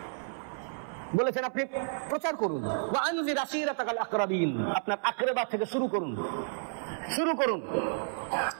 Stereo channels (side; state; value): left; silent; 57 dB below the other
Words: বলেছেন আপনি প্রচার করুন, ওয়া আনজির আসিরাতাকাল আকরাবিন, আপনার আকরাবা থেকে শুরু করুন,